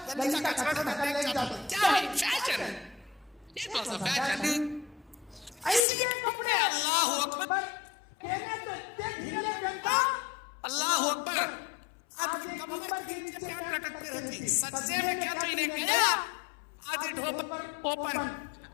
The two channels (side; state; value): right; drops out; at 5.9 s